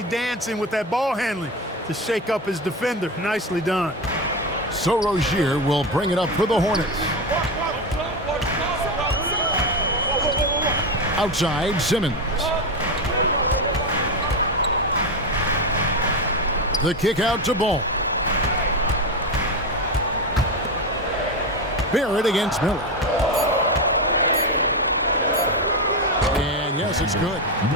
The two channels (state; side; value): normal; both; correlation 0.15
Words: dancing with that ball handling to shake up his defender? Nicely done. So Rozier will bring it up for the Hornets. Outside, Simmons. The kick out to Ball. Barrett against Miller. And yes, it's good.